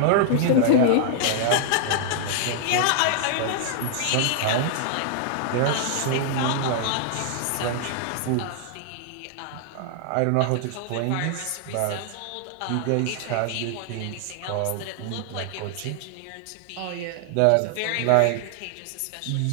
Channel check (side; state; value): both; different; correlation -0.01